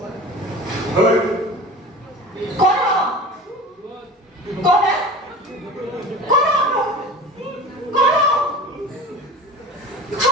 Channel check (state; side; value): normal; both; correlation 0.35